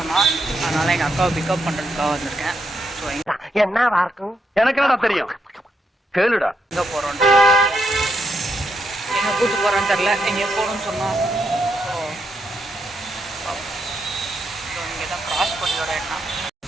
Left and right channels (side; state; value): both; normal; correlation 0.80